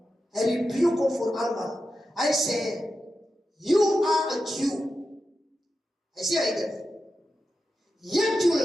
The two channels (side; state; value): both; normal; correlation 0.90